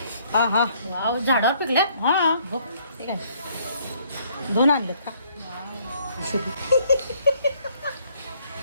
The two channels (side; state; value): both; inverted; correlation -0.65